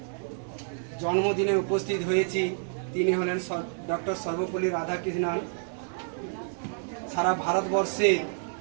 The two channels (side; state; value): left; silent; 59 dB below the other